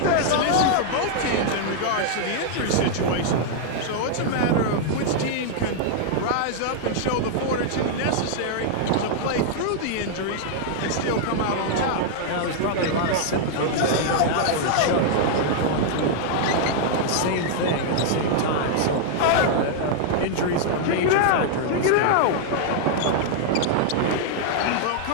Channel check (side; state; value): both; different; correlation -0.01